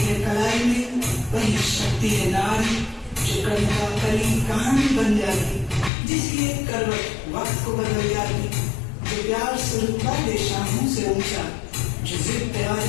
है कलाई में, वही शक्ति है नारी जो कविता कली कहानी बन जाती, जिसकी एक करवट वक्त को बदल जाती, जो प्यार से रुतबा दे शामों से ऊंचा, जो जिद पे आ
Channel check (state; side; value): drops out; right; at 5.9 s